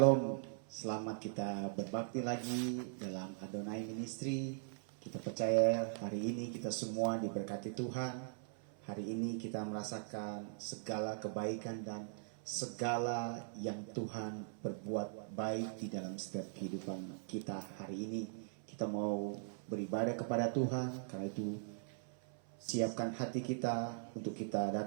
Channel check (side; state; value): left; silent; 51 dB below the other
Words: selamat kita berbakti lagi dalam Adonai Ministry. Kita percaya hari ini kita semua diberkati Tuhan. Hari ini kita merasakan segala kebaikan dan segala yang Tuhan berbuat baik di dalam setiap kehidupan kita hari ini. Kita mau beribadah kepada Tuhan, karena itu siapkan hati kita untuk kita